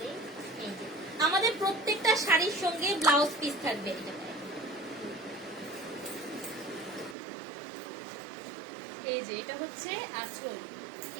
এই যে, আমাদের প্রত্যেকটা শাড়ির সঙ্গে ব্লাউজ পিস থাকবে। এটা এই যে এটা হচ্ছে আঁচল,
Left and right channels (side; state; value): left; drops out; at 7.2 s